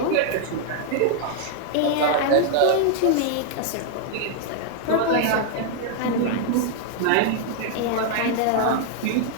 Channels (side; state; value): both; different; correlation 0.00